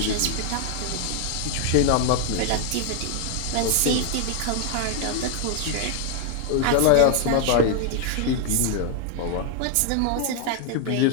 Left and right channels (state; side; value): different; both; correlation 0.00